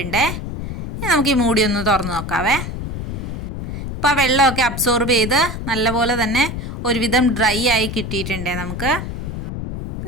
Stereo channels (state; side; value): noise; left; rumble, 6 dB below the sound